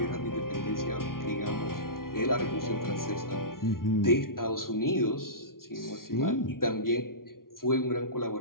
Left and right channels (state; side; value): late; right; 0.92 ms